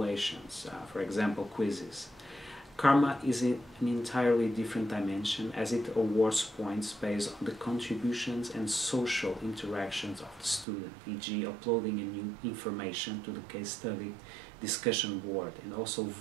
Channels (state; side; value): drops out; left; at 10.7 s